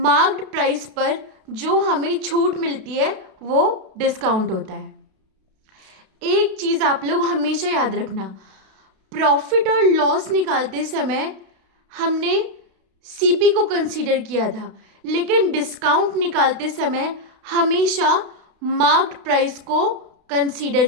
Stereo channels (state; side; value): late; left; 32 ms